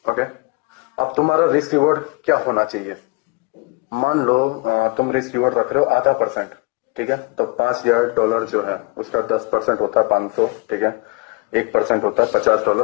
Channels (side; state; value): right; quieter; 26.1 dB